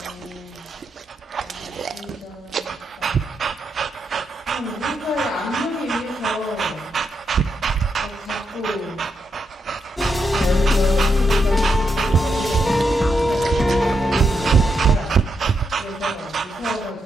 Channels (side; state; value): both; normal; correlation 0.82